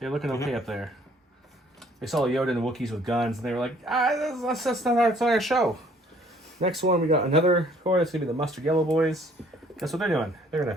okay up there. They saw Yoda and the Wookiees with guns, and they were like, that's not our show. Next one, we got another core. That's gonna be the mustard yellow boys. Guess what they're doing? They're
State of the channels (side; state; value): both; normal; correlation 0.59